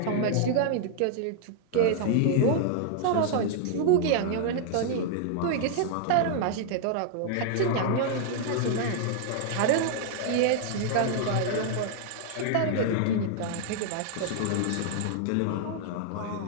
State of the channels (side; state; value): both; different; correlation -0.01